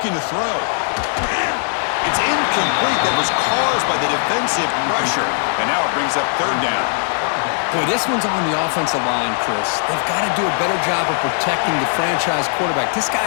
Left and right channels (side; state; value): right; silent; digital silence